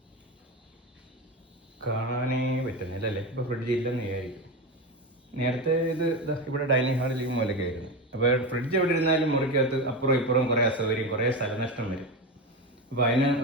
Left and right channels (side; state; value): both; normal; correlation 0.19